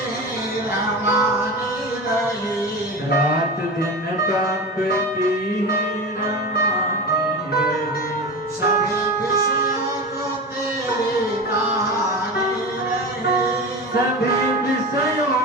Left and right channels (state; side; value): normal; both; correlation 0.27